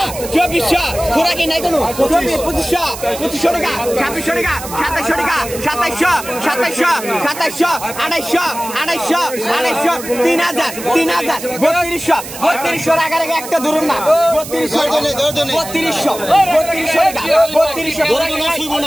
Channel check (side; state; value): right; noise; hiss, 11 dB below the sound